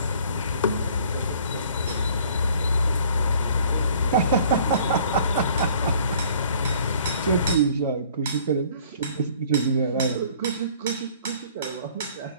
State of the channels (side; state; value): both; inverted; correlation -0.55